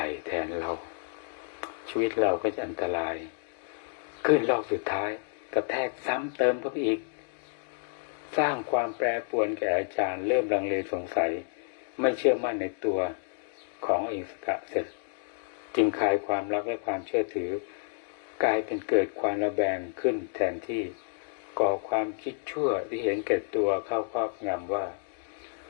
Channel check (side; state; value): right; silent; digital silence